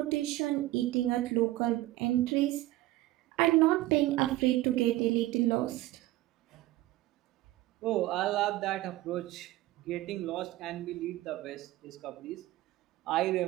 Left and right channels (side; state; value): left; quieter; 16.8 dB